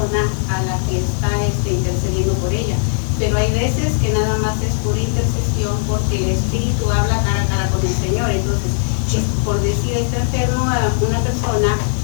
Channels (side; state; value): right; silent; 59 dB below the other